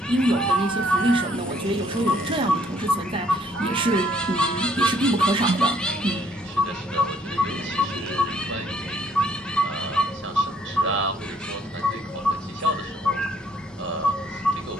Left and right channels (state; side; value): normal; both; correlation 0.65